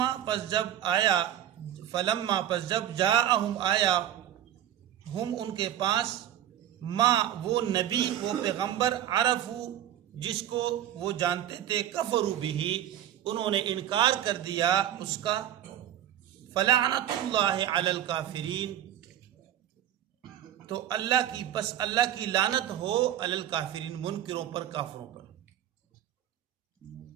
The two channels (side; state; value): left; quieter; 11.3 dB